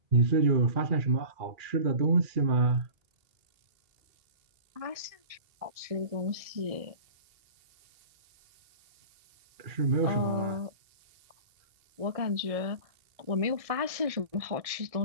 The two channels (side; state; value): left; late; 1.7 ms